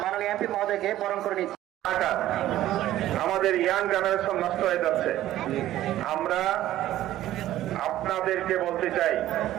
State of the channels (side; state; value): left; quieter; 13.8 dB